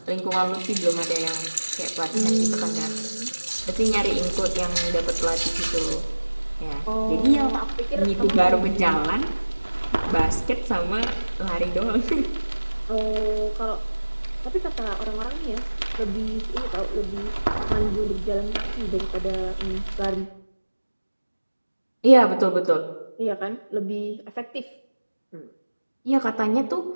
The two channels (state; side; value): inverted; both; correlation -1.00